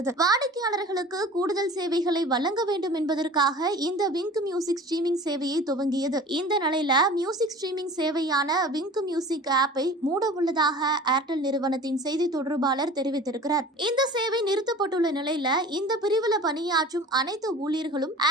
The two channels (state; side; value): normal; both; correlation 0.41